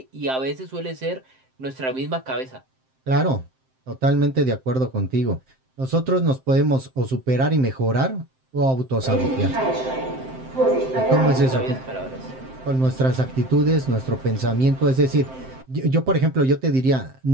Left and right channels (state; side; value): late; left; 7.7 ms